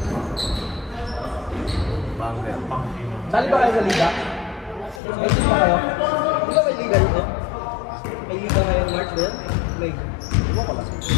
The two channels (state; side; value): drops out; right; at 5.0 s